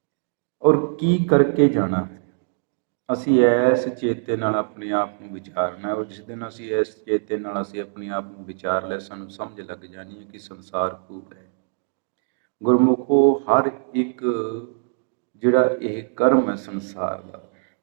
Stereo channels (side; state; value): left; silent; digital silence